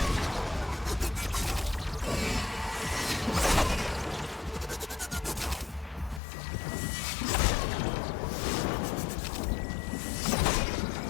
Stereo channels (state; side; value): drops out; right; at 6.2 s